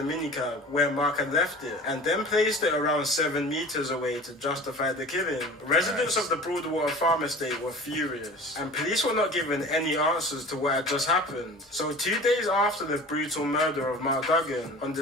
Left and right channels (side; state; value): both; normal; correlation 0.40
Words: minicab where Mark had left it and then placed it around 7 meters away to justify the killing. Residents of the Broadwater Farm Estate were furious, and police were not given any answers to what had just happened. So 2 days after the brutal murder of Mark Duggan, on the